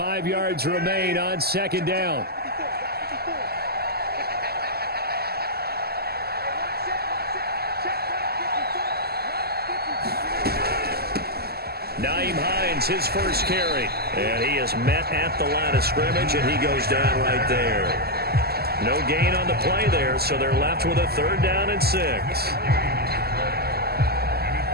yards remain on second down. Nyheim Hines, his first carry. And he is met at the line of scrimmage, and he goes down right there. No gain on the play there, so they're left with a 3rd down and 6.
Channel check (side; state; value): left; late; 0.46 ms